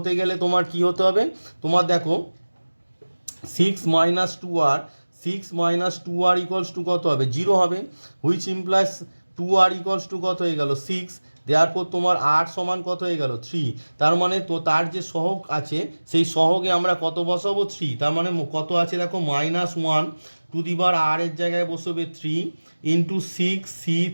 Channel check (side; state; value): both; inverted; correlation -1.00